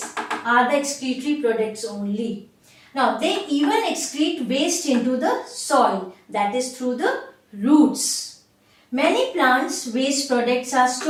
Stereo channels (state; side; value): identical; both; correlation 1.00